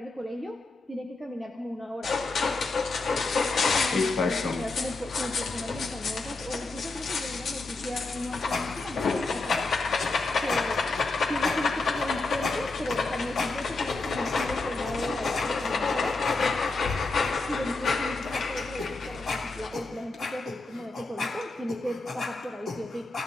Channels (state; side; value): quieter; right; 3.3 dB